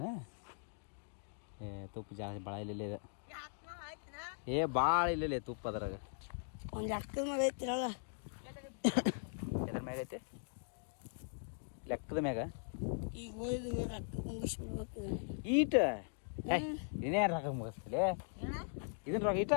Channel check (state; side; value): silent; right; digital silence